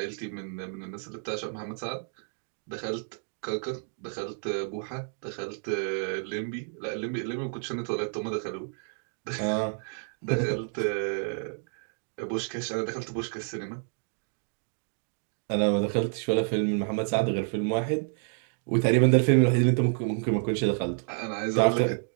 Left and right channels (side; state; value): left; silent; 58 dB below the other